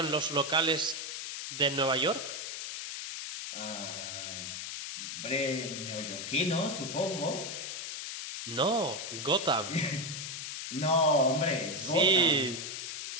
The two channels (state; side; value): noise; left; hiss, 6 dB below the sound